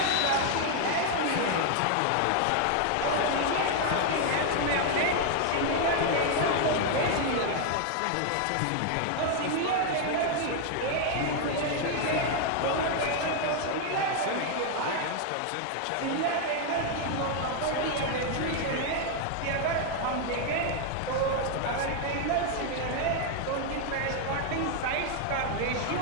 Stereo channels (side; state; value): both; different; correlation 0.00